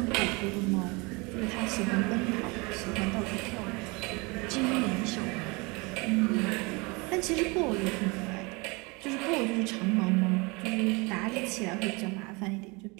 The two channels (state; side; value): quieter; left; 27.3 dB